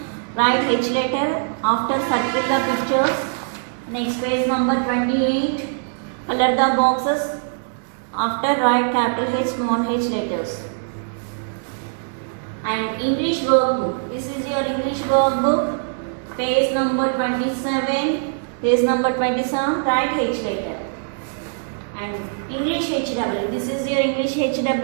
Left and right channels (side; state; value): left; silent; digital silence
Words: write H letter. After circle the pictures. Next page number 28. Color the boxes. After write capital H, small h letters. And English workbook. This is your English workbook. Page number 27. Page number 27. Write H letter. And English HW. This is your English